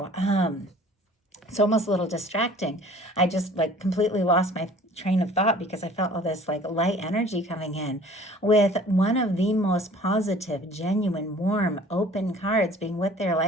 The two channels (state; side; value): normal; both; correlation 0.49